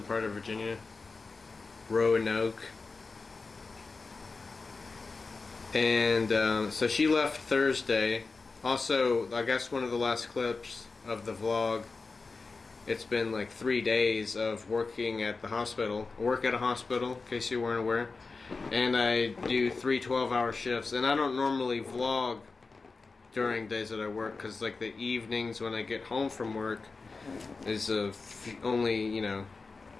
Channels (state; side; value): quieter; right; 4.1 dB